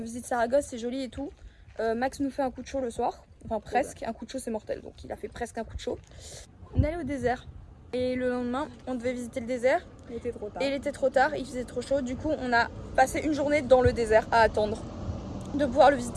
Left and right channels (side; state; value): both; identical; correlation 1.00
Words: visite Saragosse, c'est joli et tout. Max nous fait un coup de chaud le soir. Enfin presque, un coup de chaud c'est mortel. Donc il a fait presque un coup de chaud. On est allé au désert. Et le lendemain, on devait visiter le désert. Il était trop tard. Et il était trop tard, il faisait trop chaud. Du coup, on a passé une journée dans le désert à attendre de pouvoir le